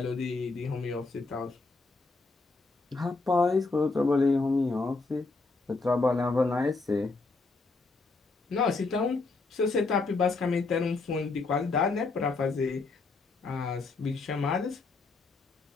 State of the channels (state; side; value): quieter; right; 3.8 dB